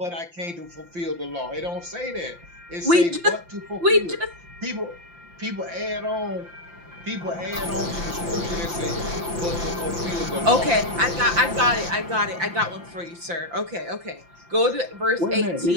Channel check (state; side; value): late; left; 5.8 ms